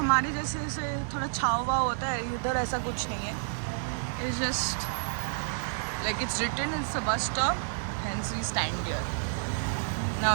जैसे से थोड़ा छाव वाव होता है, इधर ऐसा कुछ नहीं है. It's just like it's written it's a bus stop, hence we stand here. Now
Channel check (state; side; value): silent; left; digital silence